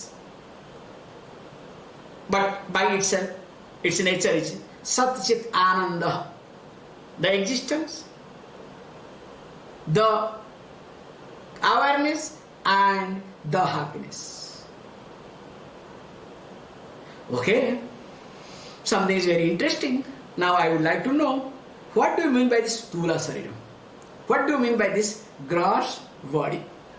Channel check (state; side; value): identical; both; correlation 1.00